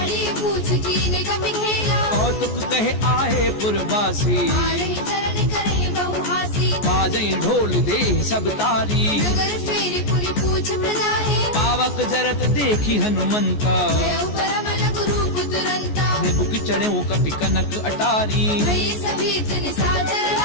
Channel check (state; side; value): late; right; 14 ms